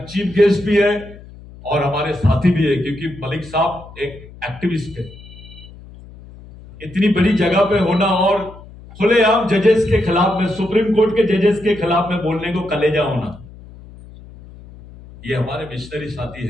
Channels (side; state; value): left; noise; hum, 19 dB below the sound